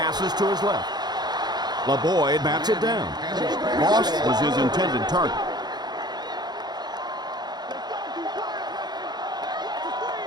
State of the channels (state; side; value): late; left; 0.20 ms